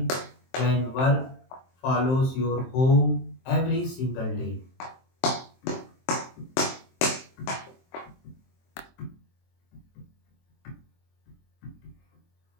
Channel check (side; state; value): right; late; 23 ms